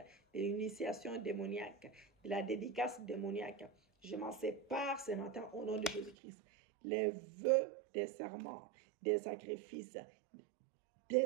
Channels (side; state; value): left; drops out; at 6.2 s